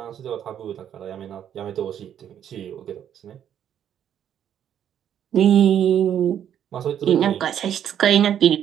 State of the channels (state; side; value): quieter; left; 9.7 dB